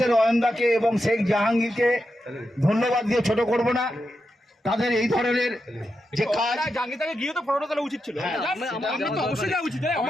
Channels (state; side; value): normal; both; correlation 0.87